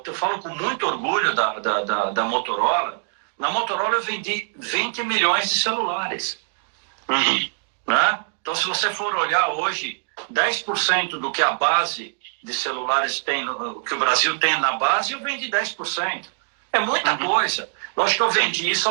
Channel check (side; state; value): left; silent; digital silence